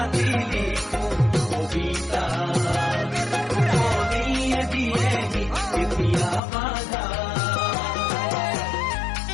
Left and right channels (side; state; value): right; drops out; at 6.4 s